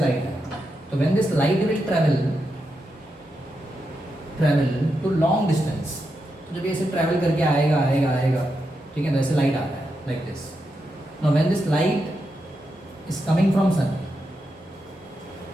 आ रहा है, तो when this light will travel to long distance, तो जब ये ऐसे ट्रैवल करके आएगा आएगा आएगा, ठीक है, तो ऐसे लाइट आ रहा है like this. Now when this light is coming from sun,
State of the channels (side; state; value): both; normal; correlation 0.85